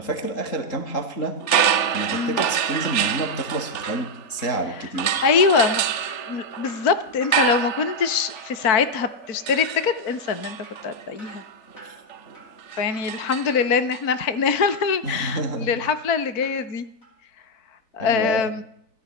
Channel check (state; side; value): late; right; 4.5 ms